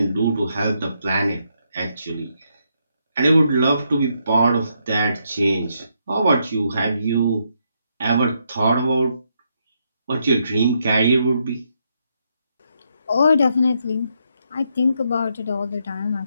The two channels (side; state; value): both; inverted; correlation -0.78